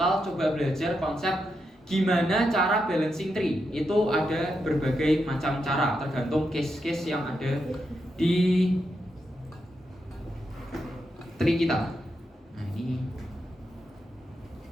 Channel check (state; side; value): normal; both; correlation 0.84